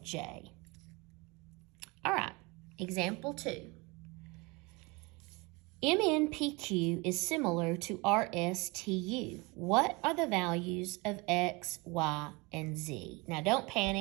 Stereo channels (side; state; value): left; quieter; 26.2 dB